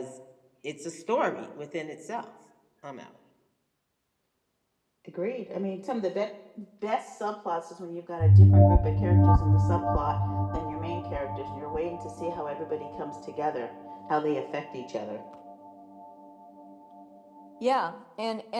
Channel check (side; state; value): both; identical; correlation 1.00